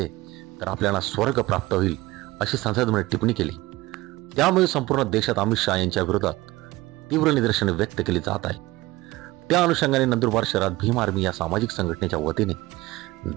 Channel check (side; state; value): left; quieter; 19.2 dB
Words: तर आपल्याला स्वर्ग प्राप्त होईल अशी संसदेमध्ये टिप्पणी केली। त्यामुळे संपूर्ण देशात अमित शाह यांच्या विरोधात तीव्र निदर्शने व्यक्त केली जात आहे। त्या अनुषंगाने नंदुरबार शहरात भीम आर्मी या सामाजिक संघटनेच्या वतीने